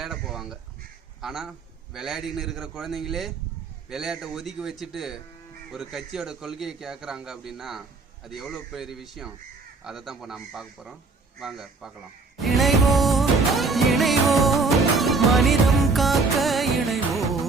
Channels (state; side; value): quieter; left; 4.0 dB